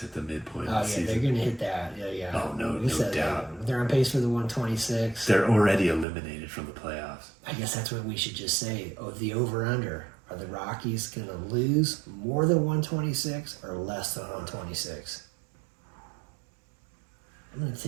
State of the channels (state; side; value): drops out; left; at 6.1 s